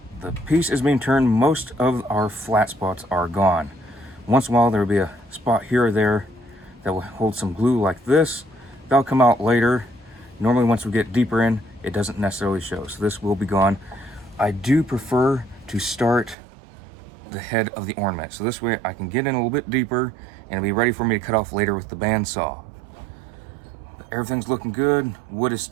the piece is being turned. Most of our flat spots are gone. Once in a while there will be a spot here or there that will hold some glue like this. That'll come out later. Normally once we get deeper in, it doesn't necessarily show. So this will be gone. I do prefer to start the head of the ornament. So this way I can get in a little bit deeper and it'll be ready for me to cut off later with the bandsaw. But everything's looking good. Wood is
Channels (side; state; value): left; drops out; at 16.4 s